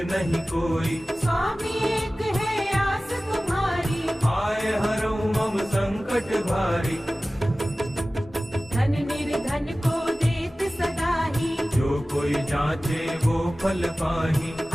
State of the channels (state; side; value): normal; both; correlation 0.97